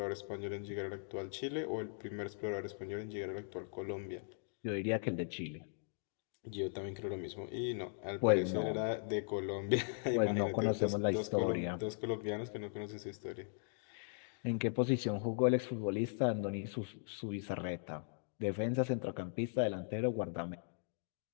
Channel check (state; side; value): silent; right; digital silence